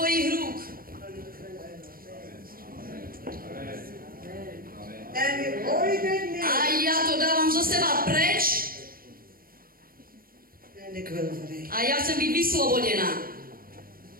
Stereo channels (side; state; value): left; late; 0.42 ms